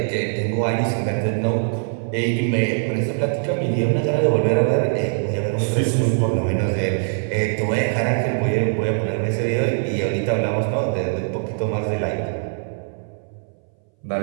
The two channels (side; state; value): left; silent; 62 dB below the other